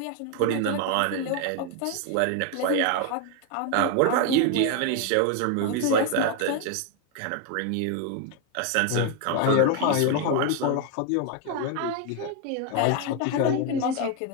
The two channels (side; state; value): both; different; correlation 0.01